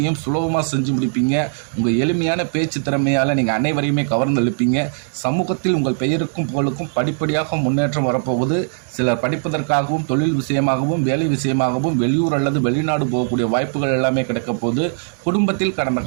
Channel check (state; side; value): silent; left; digital silence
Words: சுலபமாக செஞ்சு முடிப்பீங்க. உங்கள் எளிமையான பேச்சு திறமையால் நீங்கள் அனைவரையுமே கவர்ந்து எழுப்பீங்க. சமூகத்தில் உங்கள் பெயருக்கும் புகழுக்கும் படிப்படியாக முன்னேற்றம் வரப்போகுது. சிலர் படிப்பதற்காகவும் தொழில் விஷயமாகவும் வேலை விஷயமாகவும் வெளியூர் அல்லது வெளிநாடு போகக்கூடிய வாய்ப்புகள் எல்லாமே கிடைக்க போகுது. குடும்பத்தில் கடந்த